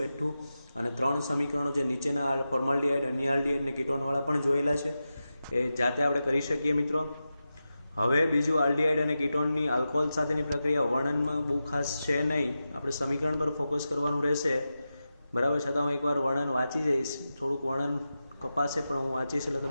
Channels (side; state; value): both; inverted; correlation -0.92